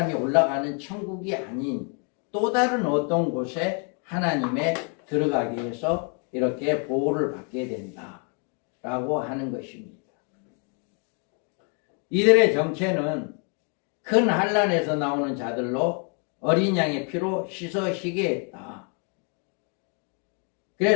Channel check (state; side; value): quieter; right; 39.0 dB